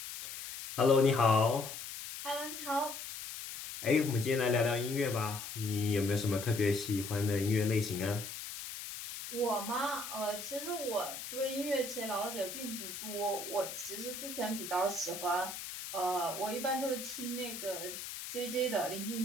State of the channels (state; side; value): noise; left; hiss, 8 dB below the sound